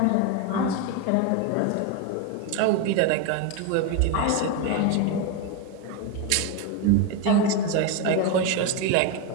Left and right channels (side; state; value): both; different; correlation 0.03